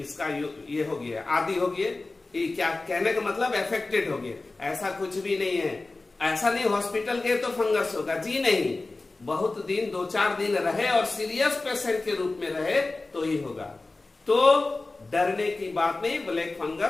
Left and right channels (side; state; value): right; quieter; 3.3 dB